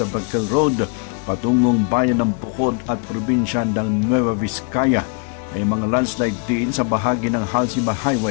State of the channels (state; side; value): quieter; right; 36.5 dB